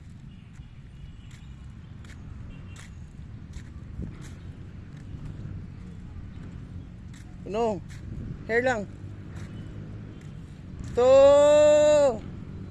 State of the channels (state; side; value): identical; both; correlation 1.00